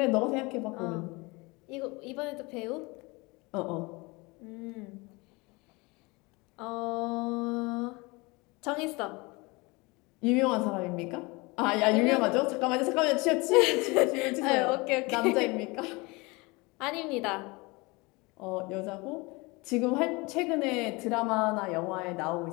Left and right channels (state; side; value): quieter; right; 25.5 dB